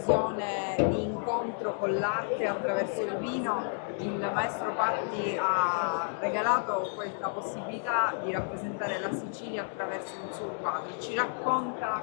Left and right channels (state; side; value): silent; right; 57 dB below the other